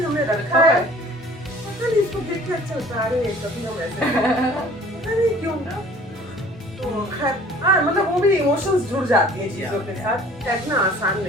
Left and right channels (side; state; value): both; normal; correlation 0.50